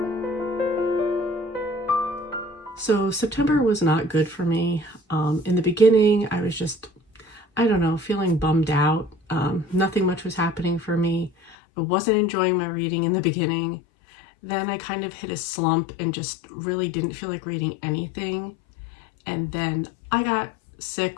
So September was not good for me. In the beginning, I was just, feeling bummed out. Nothing much was happening for me. I wasn't enjoying my reading in the beginning. Then I kind of hit a slump and just really didn't feel like reading anything. And then I got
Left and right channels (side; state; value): right; drops out; at 11.6 s